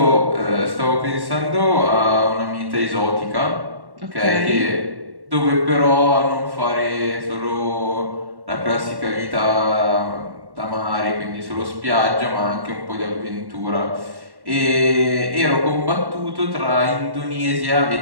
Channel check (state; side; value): late; left; 1.1 ms